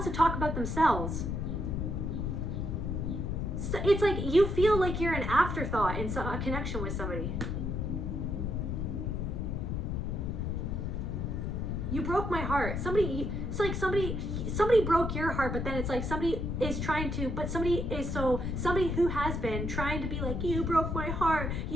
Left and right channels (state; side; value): noise; left; rumble, 1 dB below the sound